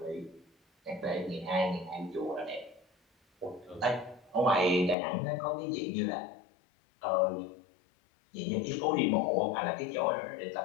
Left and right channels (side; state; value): right; drops out; at 5.0 s